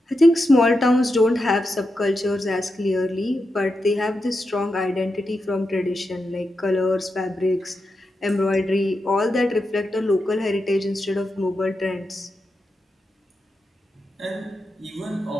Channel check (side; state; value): both; normal; correlation 0.88